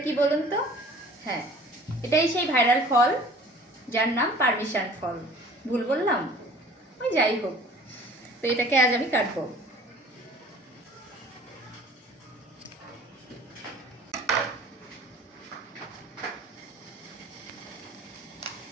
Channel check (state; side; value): normal; both; correlation 0.47